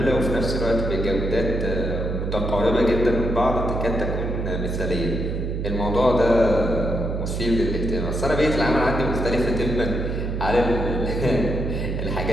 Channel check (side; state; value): right; noise; hum, 2 dB below the sound